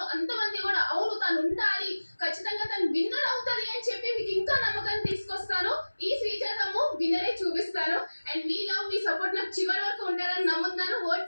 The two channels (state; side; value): inverted; both; correlation -1.00